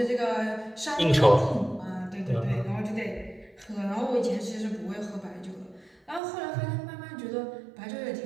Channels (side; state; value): left; drops out; at 6.2 s